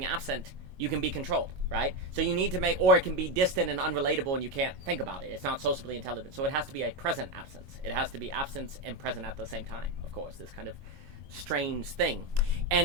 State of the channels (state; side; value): late; left; 22 ms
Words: absent, you can be controlled, right? So you need to or it can be distant and unrelatable and you can't think about it. It's not socially intelligent. So it has to be a present absence. It has to be absence and present at the same time, of course, this kind of strange thing.